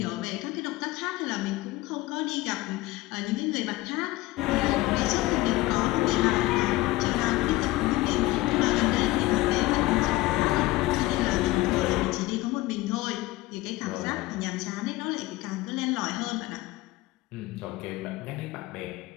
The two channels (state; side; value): quieter; right; 18.9 dB